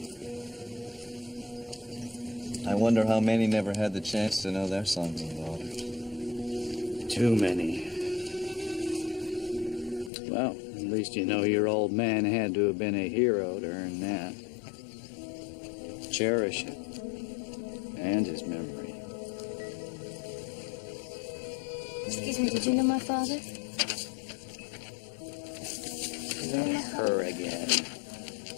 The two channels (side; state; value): right; drops out; at 10.1 s